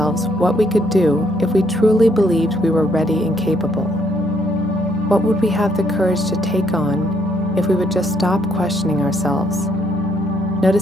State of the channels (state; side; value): normal; both; correlation 0.70